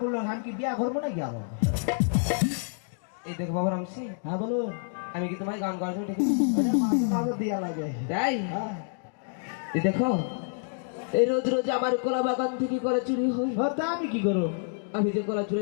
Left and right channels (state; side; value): silent; right; digital silence